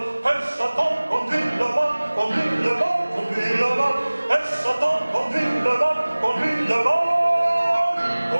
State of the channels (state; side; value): inverted; both; correlation -1.00